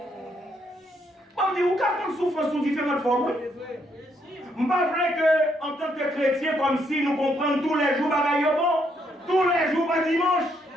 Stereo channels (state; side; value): normal; both; correlation 0.73